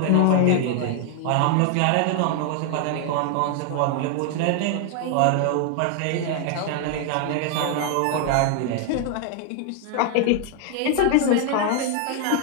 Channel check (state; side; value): different; both; correlation 0.00